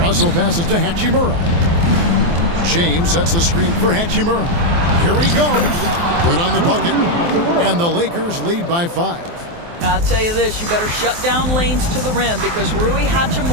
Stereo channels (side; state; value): left; late; 23 ms